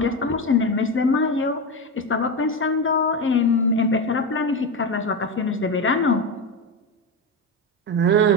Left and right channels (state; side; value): normal; both; correlation 0.16